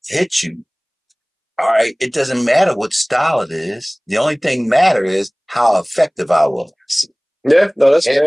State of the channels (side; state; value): both; identical; correlation 1.00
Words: hit you, all right, it doesn't matter what style it is. The only thing matter is how effective I was. Yeah, no, that's